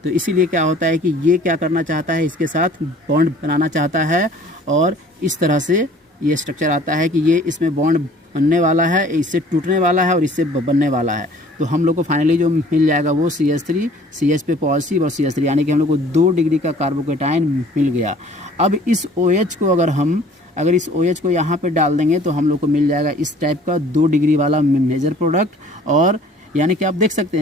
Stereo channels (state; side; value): normal; both; correlation 0.52